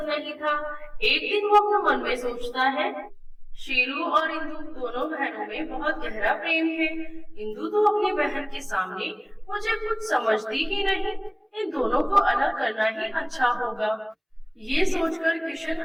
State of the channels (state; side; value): identical; both; correlation 1.00